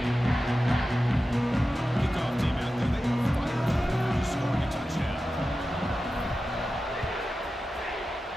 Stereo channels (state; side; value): normal; both; correlation 0.93